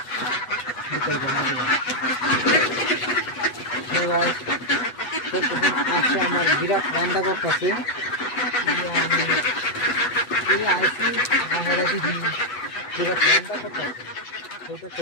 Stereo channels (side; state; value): right; late; 8.1 ms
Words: আসে আমার বিরাট রান্না করতেছে আইসি বিরাট রান্না